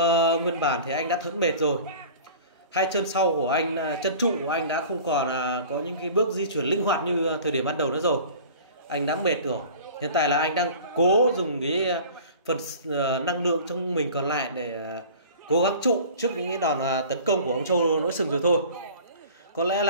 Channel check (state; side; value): inverted; both; correlation -0.42